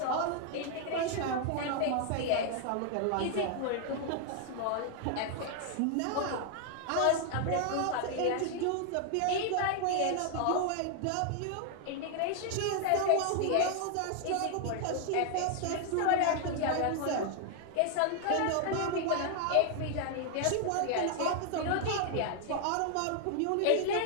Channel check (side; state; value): both; different; correlation 0.00